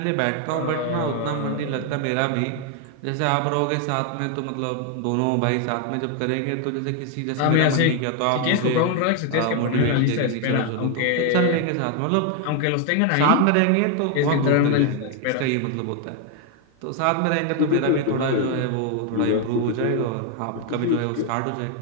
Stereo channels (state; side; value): different; both; correlation 0.00